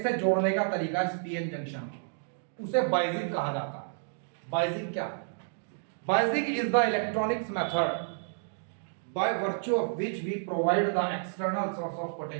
से जोड़ने का तरीका इस पीएन जंक्शन, उसे बाइजिंग कहा जाता है। बाइजिंग क्या? Biasing is the electronics method by virtue of which we provide the external source of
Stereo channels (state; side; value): silent; left; digital silence